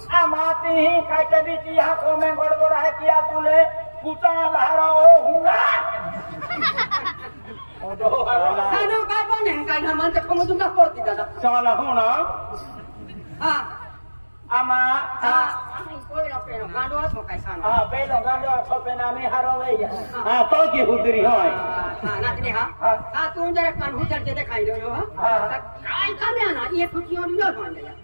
आमाती ही कहते भी यहाँ को में गड़बड़ है किया तुले कुटा लहरा ओ हुआ सानो का बने का मन तो कम तुम का पड़ती दादा साला होना हां आमा कोई ना पेनो गांडो तो कैसा ना पेनो गांडो तो पेना में हारो ले तो की हुदरी होय नाचने तुम जरा कान हुचर के दिखाई दो काय करने ना ये खुशियों नहीं बन गया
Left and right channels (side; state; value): both; inverted; correlation -1.00